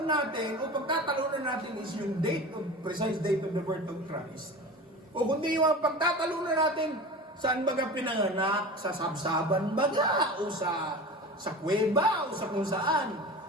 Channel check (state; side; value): normal; both; correlation 0.33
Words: natin, o pagtatalunan natin is yung precise date of the birth of Christ, o kundi yung pagtatalunan natin, saan baga pinanganak? Sa sabsaban baga? O sa kuweba? O sa kung saan?